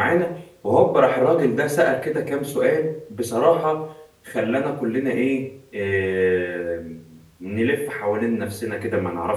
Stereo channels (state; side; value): identical; both; correlation 1.00